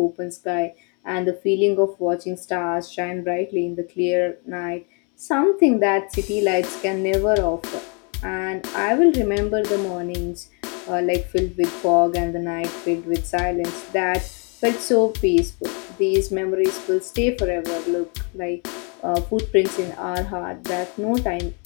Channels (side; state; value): right; quieter; 36.0 dB